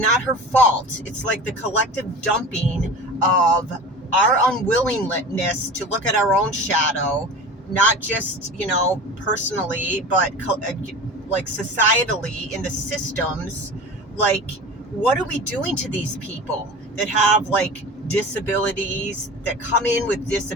her fault. It's like the collective dumping of our unwillingness to look at our own shadow, not just, personally, but like societally in the systems. Like, what are we doing to these people that have like disabilities, that come in with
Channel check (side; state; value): both; normal; correlation 0.34